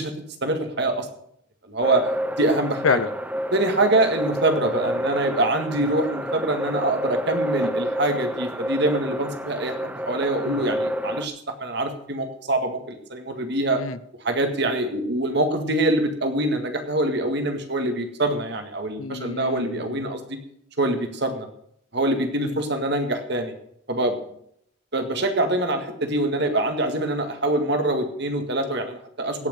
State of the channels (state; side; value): normal; both; correlation 0.12